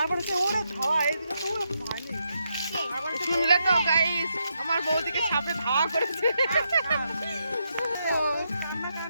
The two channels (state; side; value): inverted; both; correlation -0.81